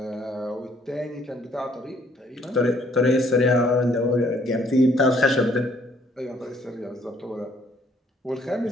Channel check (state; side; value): normal; both; correlation 0.63